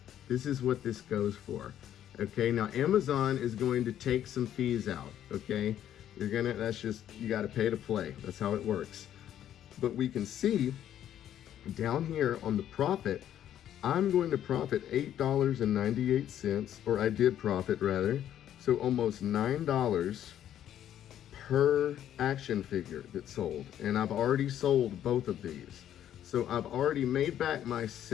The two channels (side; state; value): right; quieter; 10.9 dB